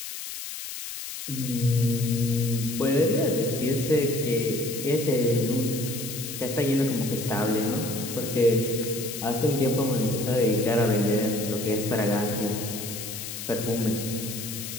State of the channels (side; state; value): left; noise; hiss, 8 dB below the sound